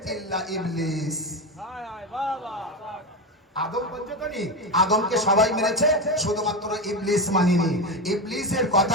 ইল্লা ইবলিস। আদম পঞ্চতনী, আদমকে সবাই মেনেছে, শুধুমাত্র ইবলিস মানেনি। ইবলিসের কথা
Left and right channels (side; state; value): both; normal; correlation 0.16